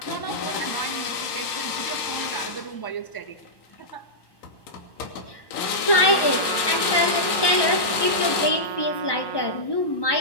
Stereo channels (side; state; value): right; late; 1.3 ms